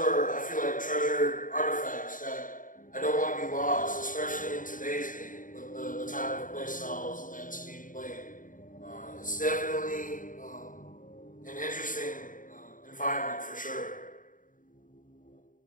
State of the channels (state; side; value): late; right; 0.39 ms